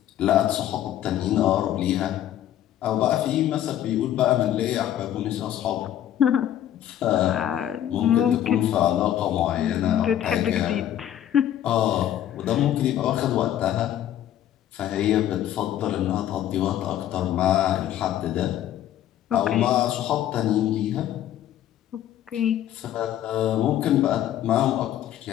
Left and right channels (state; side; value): quieter; right; 11.6 dB